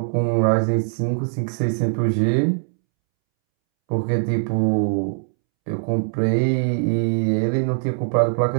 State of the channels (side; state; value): left; silent; 65 dB below the other